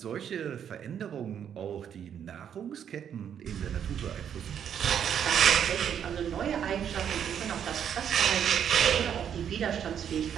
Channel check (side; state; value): left; quieter; 8.8 dB